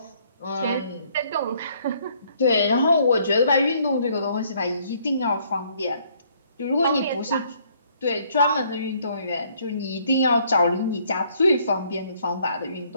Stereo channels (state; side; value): inverted; both; correlation -0.65